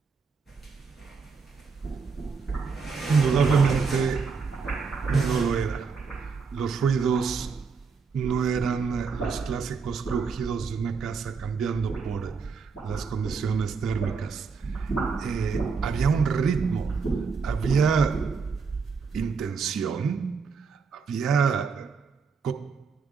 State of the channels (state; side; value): quieter; left; 5.3 dB